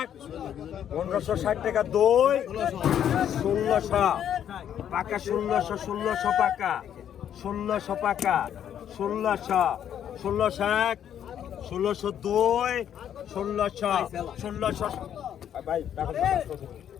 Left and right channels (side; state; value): right; quieter; 9.7 dB